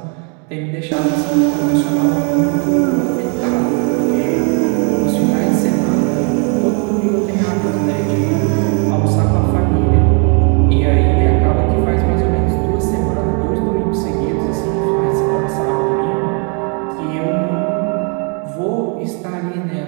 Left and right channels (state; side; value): quieter; left; 37.7 dB